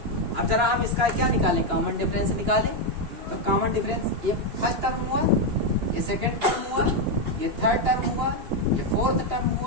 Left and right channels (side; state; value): left; late; 2.8 ms